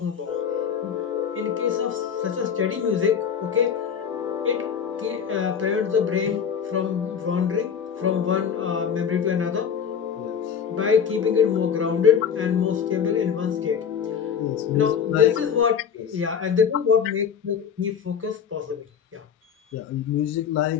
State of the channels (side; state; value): right; quieter; 7.4 dB